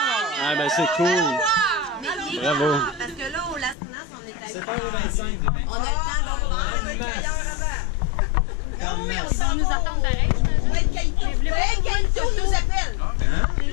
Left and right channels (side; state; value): right; drops out; at 3.8 s